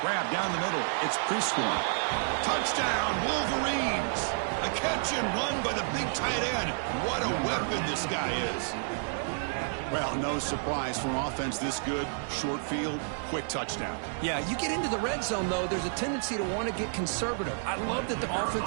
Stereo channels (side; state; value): left; silent; digital silence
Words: Grab down the middle. It's Prescorn. Touchdown, Wolverines! A catch and run by the big tight end. What a weapon this guy is. Well, no surprise for an offense this good. Short field, quick touchdown. Yeah, you get into the red zone, though, there's a tendency to want to get conservative. I love that the